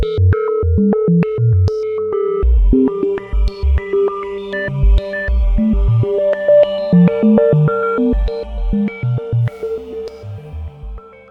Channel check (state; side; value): identical; both; correlation 1.00